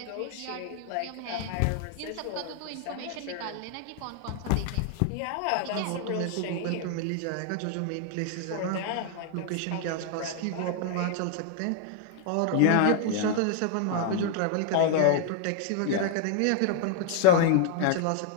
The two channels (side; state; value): both; different; correlation 0.00